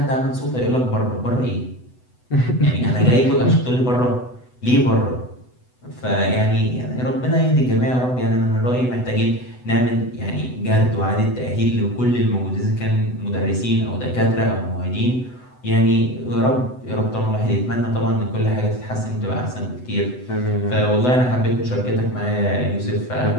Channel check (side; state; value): right; late; 8.0 ms